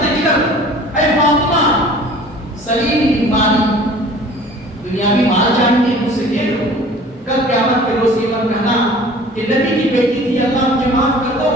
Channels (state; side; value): normal; both; correlation 0.47